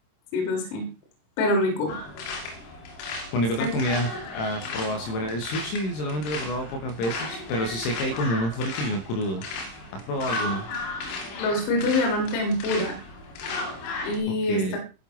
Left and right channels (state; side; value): late; right; 26 ms